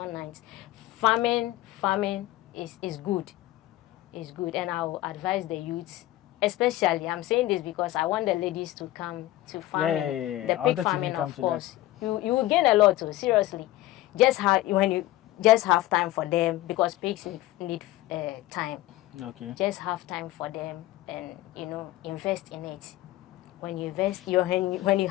nice. Farming is good. It's good. And I will advise the youths, especially, I'm saying this because I want the ladies to come to farming. The pig farming, of course. You will gain a lot too, seriously. When you just have time for them, because pigs need time. Okay. Just have time for them and invest in it. When you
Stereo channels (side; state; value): right; quieter; 16.3 dB